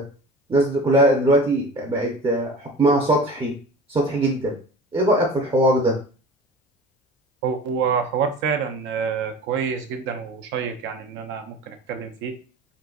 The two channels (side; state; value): both; normal; correlation 0.38